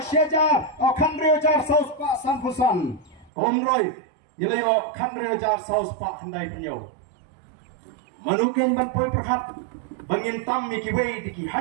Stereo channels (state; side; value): drops out; left; at 3.3 s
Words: shejar o khandre jar sauspa sanpusan omroi ilayo khandre jar sauspa handai banyo manuken ban poi perhat bangin tam mi ki wei diki